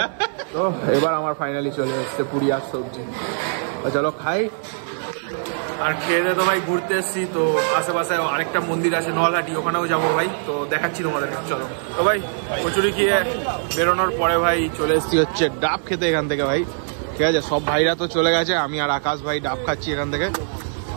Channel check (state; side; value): silent; left; 64 dB below the other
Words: তো এবার আমার ফাইনালি চলে এসছে পুরি আর সবজি। চলো খাই। আর খেয়ে দিয়ে তো ভাই ঘুরতে এসছি, তো আশেপাশে আরেকটা মন্দির আছে নলহাটি, ওখানেও যাবো ভাই, তো দেখাচ্ছি তোমাদের। চলো তো ভাই, কচুরি খেয়ে বেরোনোর পরে ভাই চলে এসছি হচ্ছে ডাব খেতে এখান থেকে ভাই। ঠিক আছে, সব ভাইরা তো চলে গেছে, আমি আর আকাশ ভাই ডাব খাচ্ছি এখান থেকে।